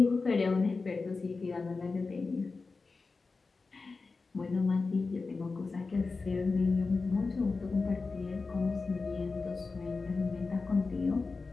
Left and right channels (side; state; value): right; quieter; 4.1 dB